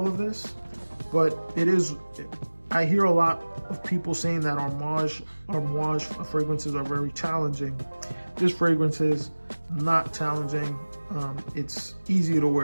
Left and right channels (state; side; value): inverted; both; correlation -1.00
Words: of this, but I hear a lot of people saying that Amouage fragrances are very challenging. This fragrance is not challenging. It's easy to